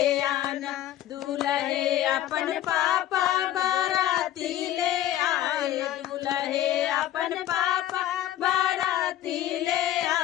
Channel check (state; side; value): quieter; right; 12.9 dB